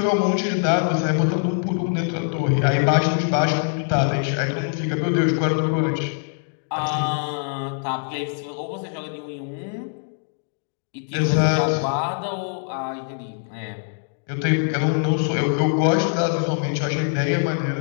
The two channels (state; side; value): silent; right; digital silence